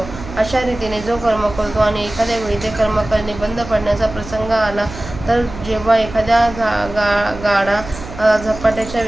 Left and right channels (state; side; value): noise; right; hum, 13 dB below the sound